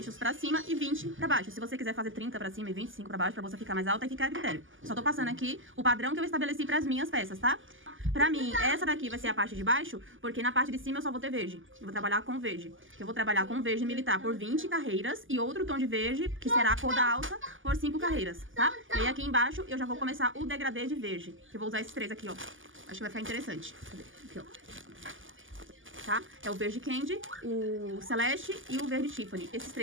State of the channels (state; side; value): late; left; 0.58 ms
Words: pra cima e 20 pra baixo. Se você quiser fazer 30 pra cima e 25 pra baixo, pra você ficar mais alta, aí fica a critério. Só tô passando aqui o padrão que eu estabeleci pras minhas peças, tá? Pra mim, essa daqui vai ser a parte de baixo, porque na parte de cima eu só vou ter verde. Eu vou trabalhar com verde. Eu vou trabalhar com verde militar por 20 carreiras e outro tom de verde, que será a cor da alça, por 5 carreiras, tá? E aí aqui embaixo eu já vou começar o degradê de verde, que eu vou usar esses 3 aqui, ó. Acho que vai ficar interessante. Cadê? Aqui, ó. Tá? É o verde candy, o celeste e o verde Tiffany. Esses